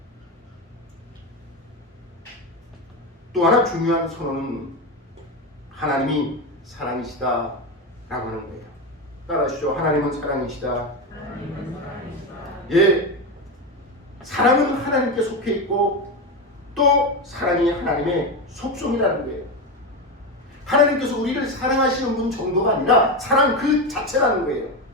또 하나 중요한 선언은 하나님이 사랑이시다 라고 하는 거예요. 따라하시죠. 하나님은 사랑이시다. 예, 사랑은 하나님께 속해 있고 또 사랑이 하나님의 속성이라는 거예요. 하나님께서 우리를 사랑하시는 분 정도가 아니라 사랑 그 자체라는 거예요.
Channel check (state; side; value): normal; both; correlation 0.16